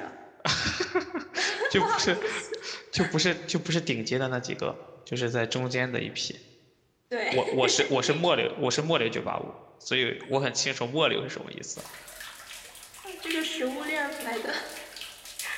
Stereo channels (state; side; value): identical; both; correlation 1.00